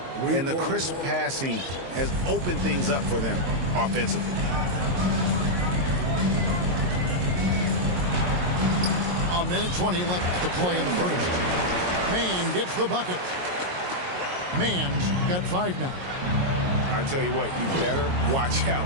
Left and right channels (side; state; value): left; late; 22 ms